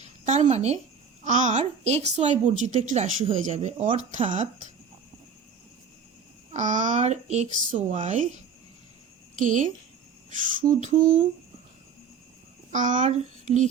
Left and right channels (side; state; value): left; quieter; 6.1 dB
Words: তার মানে আর এক্স ওয়াই বর্জিত একটি রাশি হয়ে যাবে, অর্থাৎ আর এক্স ওয়াই কে শুধু আর